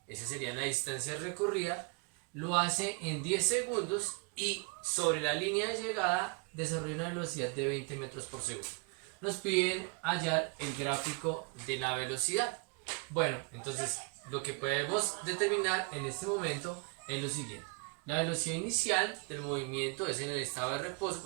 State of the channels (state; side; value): quieter; left; 32.9 dB